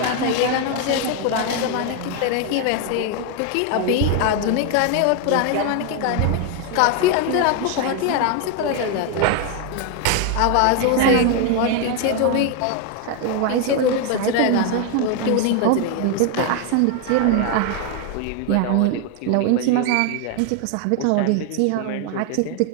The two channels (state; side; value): different; both; correlation 0.01